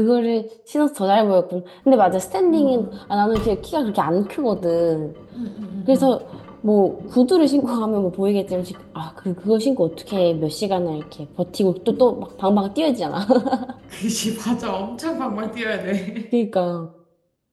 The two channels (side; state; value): both; identical; correlation 1.00